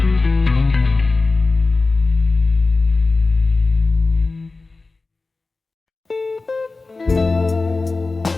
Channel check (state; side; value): quieter; right; 3.6 dB